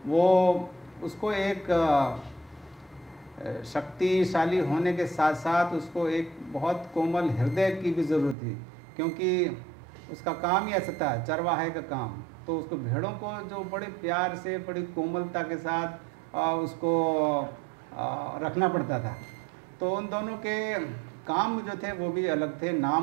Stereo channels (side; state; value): left; drops out; at 8.3 s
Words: वो उसको एक शक्तिशाली होने के साथ साथ उसको एक बहुत कोमल हृदय की भी ज़रूरत थी, क्योंकि उसका काम ही ऐसा था, चरवाहे का काम। तो उसको भेड़ों को जो बड़े प्यार से बड़ी कोमलता के साथ उसको रखना पड़ता था। तो उन दोनों के काम जो थे वो भी अलग थे,